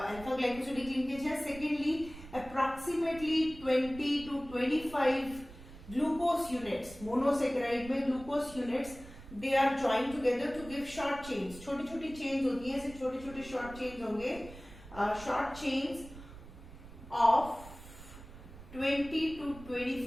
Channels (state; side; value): noise; right; rumble, 16 dB below the sound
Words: ग्लाइकोसिडिक लिंकेज है. Secondly approximately 20 to 25 glucose units, monosaccharide में glucose units they are join together to give short chains. छोटी छोटी चेन्स होती हैं, ऐसे छोटे छोटे शॉर्ट चेन्स होंगे, short chains of 20 to